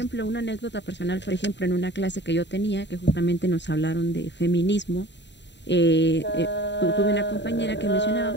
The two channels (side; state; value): right; late; 0.52 ms